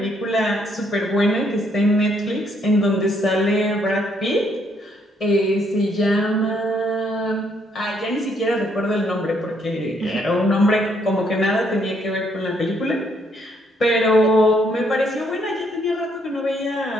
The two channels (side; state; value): both; normal; correlation 0.71